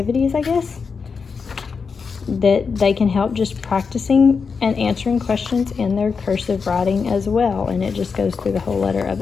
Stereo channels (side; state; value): right; quieter; 5.4 dB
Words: I guess, that they can help just practicing and answering questions in their cursive writing as well. And it just goes through the whole letter of